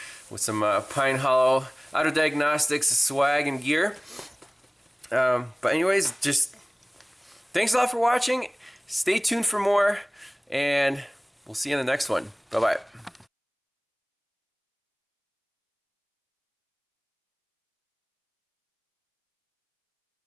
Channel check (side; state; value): both; identical; correlation 1.00